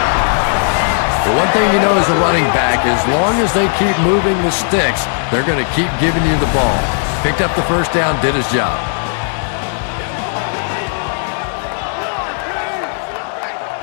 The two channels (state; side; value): silent; right; 62 dB below the other